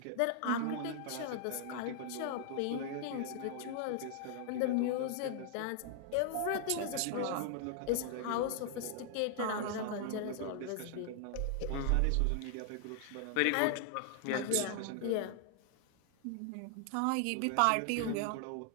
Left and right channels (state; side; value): different; both; correlation 0.00